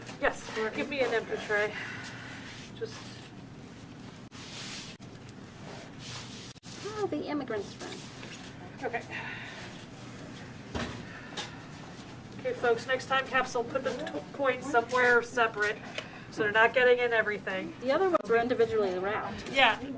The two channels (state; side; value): identical; both; correlation 1.00